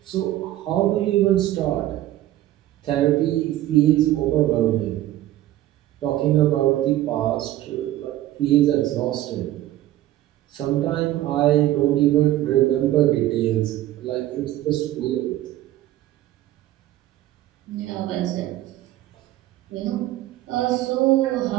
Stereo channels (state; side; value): quieter; left; 14.4 dB